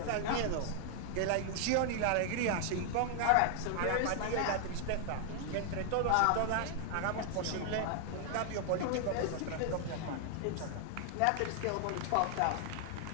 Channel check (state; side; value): different; both; correlation 0.00